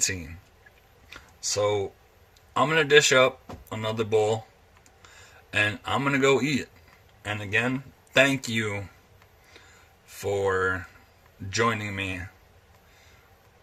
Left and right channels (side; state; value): both; identical; correlation 1.00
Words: So I'm going to dish up another bowl and I'm going to go eat it. And again, thank you for joining me